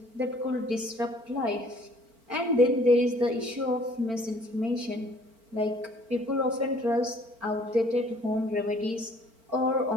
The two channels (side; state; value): left; late; 4.4 ms